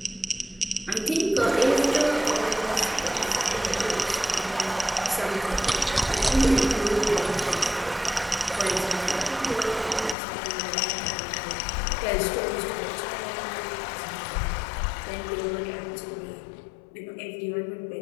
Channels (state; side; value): drops out; right; at 10.2 s